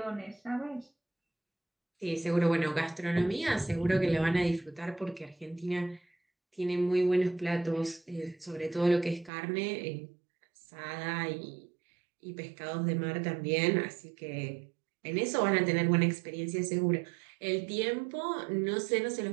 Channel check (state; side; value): drops out; left; at 9.3 s